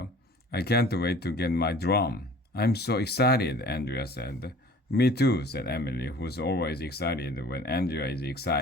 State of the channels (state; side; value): normal; both; correlation 0.47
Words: I can't wait to get my drum. I'm so excited, Andrea said. Me too, said Emily, who's always excited when Andrea is